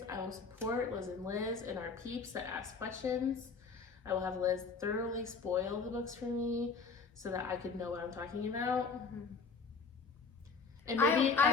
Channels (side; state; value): right; quieter; 4.9 dB